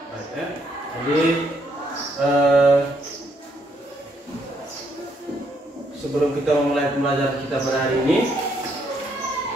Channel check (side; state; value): both; normal; correlation 0.73